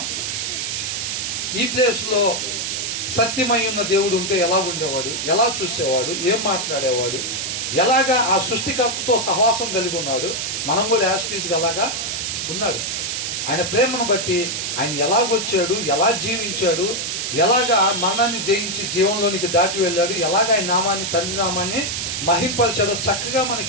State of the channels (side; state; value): right; noise; hiss, 2 dB below the sound